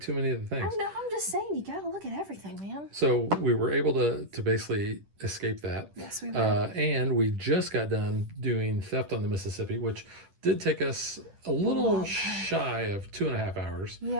many of the things. I know, I'm just saying, you gotta look at everything, man. So we were able to basically escape that. Yes, we were. And we just got done doing Theft on the Mississippi, which did take us a little shy of 2.5 hours.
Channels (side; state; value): left; late; 10 ms